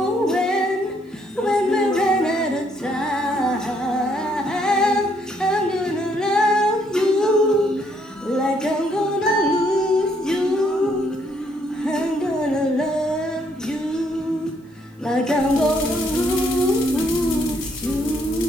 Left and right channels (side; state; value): both; normal; correlation 0.70